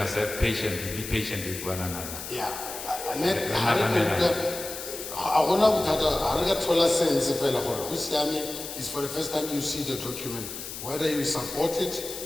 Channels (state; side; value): noise; left; hiss, 9 dB below the sound